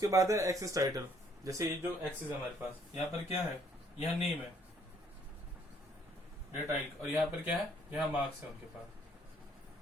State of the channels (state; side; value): normal; both; correlation 0.64